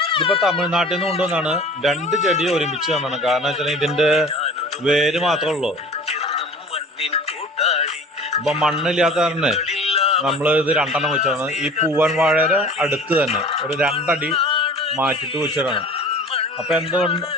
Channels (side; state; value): both; normal; correlation 0.43